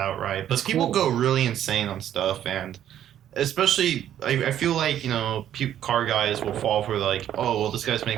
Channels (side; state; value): left; quieter; 10.8 dB